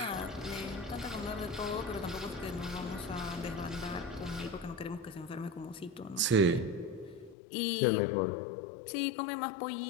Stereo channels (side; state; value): right; drops out; at 7.4 s